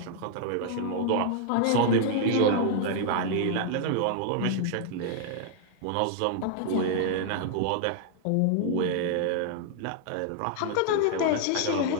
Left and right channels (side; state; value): both; different; correlation 0.00